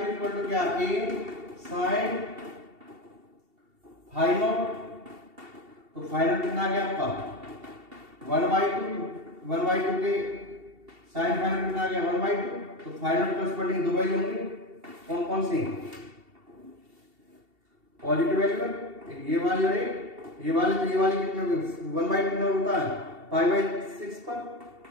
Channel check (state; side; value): late; left; 2.7 ms